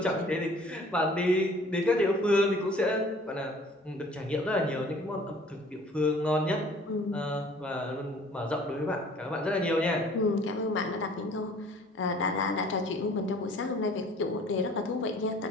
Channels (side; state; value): both; normal; correlation 0.52